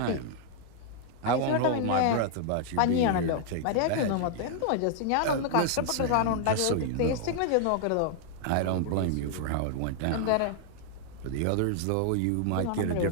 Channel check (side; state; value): both; different; correlation -0.01